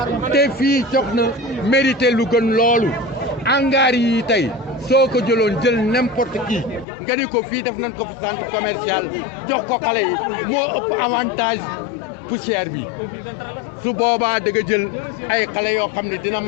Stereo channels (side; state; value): right; drops out; at 6.9 s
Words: te fii jox na mérité lu gën loolu hangar yi tey soo ko jëloon jël n'importe qui nga ni ko fii def nañ ko fi centre commercial jox ko xale yi moo ëpp avantage poussière bi su boobaa da nga jël ay xale yoo xam ne dina